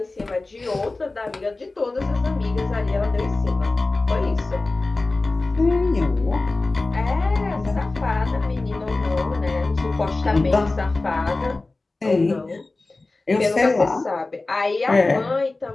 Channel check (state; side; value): quieter; right; 3.3 dB